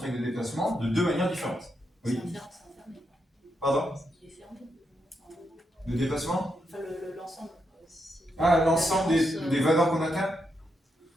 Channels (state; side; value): normal; both; correlation 0.82